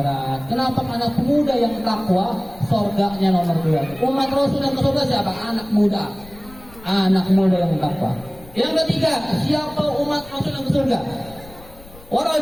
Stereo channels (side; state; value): left; noise; rumble, 21 dB below the sound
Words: Kenapa? Anak muda yang takwa, surganya nomor 2. Umat Rasul yang ke surga siapa? Anak muda. Anak muda yang takwa. Yang ketiga, siapa umat Rasul yang ke surga? Wa